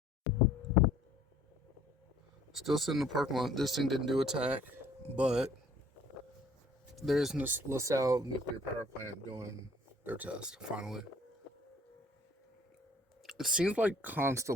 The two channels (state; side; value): normal; both; correlation 0.56